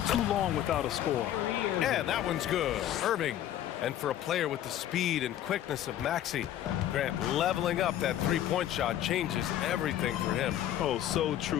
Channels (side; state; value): right; quieter; 11.8 dB